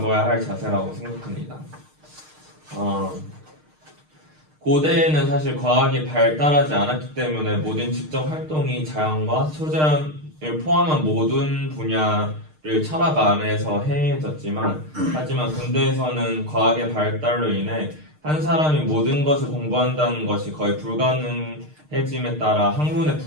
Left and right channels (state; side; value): late; left; 6.5 ms